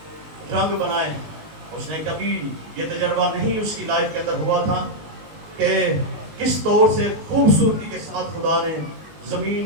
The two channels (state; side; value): late; left; 19 ms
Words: رنگ بنائے. اس نے کبھی یہ تجربہ نہیں اس کی لائف کے اندر ہوا تھا کہ کس طور سے خوبصورتی کے ساتھ خدا نے